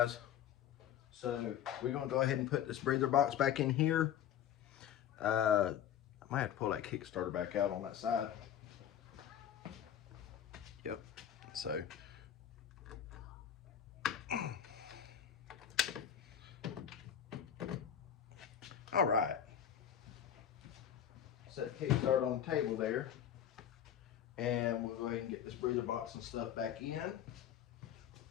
So we're going to go ahead and put this breather box back in here. I might have to pull that Kickstarter back out on that side. Yep. So all right. Set the Kickstarter on the table there. And we'll go ahead and get this breather box and stuff back in.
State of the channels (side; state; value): right; quieter; 9.6 dB